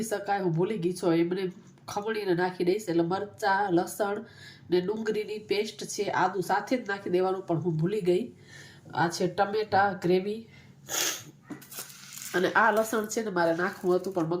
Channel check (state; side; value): identical; both; correlation 1.00